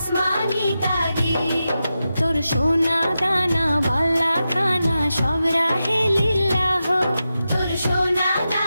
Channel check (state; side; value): inverted; both; correlation -0.90